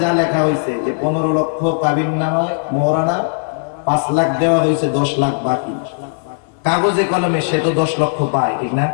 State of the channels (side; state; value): right; silent; digital silence